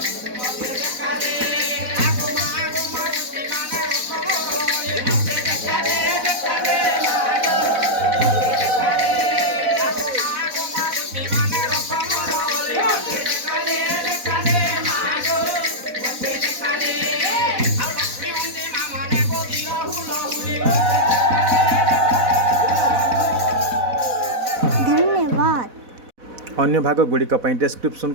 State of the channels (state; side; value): late; left; 4.1 ms